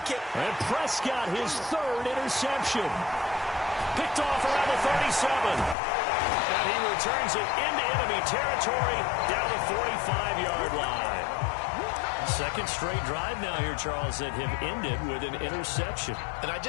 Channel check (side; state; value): right; drops out; at 5.8 s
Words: can't... And Prescott, his third interception. Picked off around the 37. And he returns it into enemy territory down the 45-yard line. Second straight drive now here, Charles, that have ended with an interception. And I